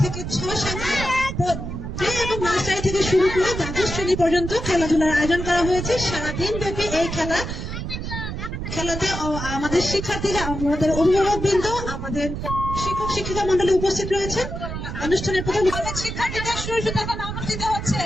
থেকে 6 সালে প্লে এবং নার্সারি থেকে শুরু করে দ্বাদশ শ্রেণী পর্যন্ত খেলাধুলার আয়োজন করা হয়েছে। সারাদিন ব্যাপী এই খেলাতে আমাদের শিক্ষার্থীরা, আমাদের অভিভাবক বৃন্দ, আমাদের শিক্ষক শিক্ষিকা মন্ডলী উপস্থিত রয়েছেন। অনুষ্ঠানের প্রথম শিক্ষার্থীদের সুরক্ষিত অনুষ্ঠিত হচ্ছে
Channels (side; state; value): right; noise; rumble, 6 dB below the sound